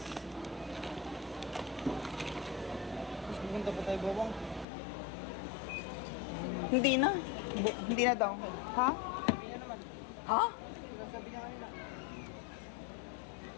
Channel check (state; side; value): drops out; right; at 4.7 s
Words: Mas maganda pa tayo, Bobong. Hindi na. Hindi na daw. Ha? Sabi niya naman. Ha? Sabi niya kanina.